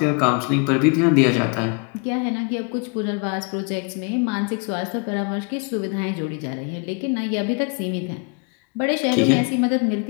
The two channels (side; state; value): right; quieter; 35.9 dB